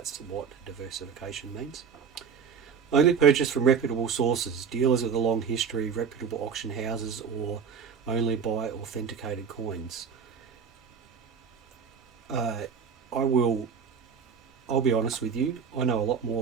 what diversification means. Only purchase from reputable sources, dealers with a long history, reputable auction houses, or only buy authenticated coins. I'll be honest with you, I know a lot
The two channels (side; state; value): left; quieter; 6.7 dB